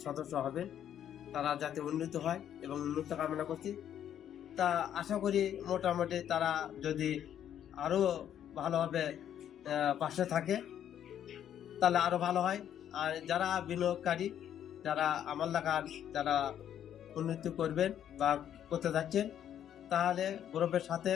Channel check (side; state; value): right; quieter; 10.1 dB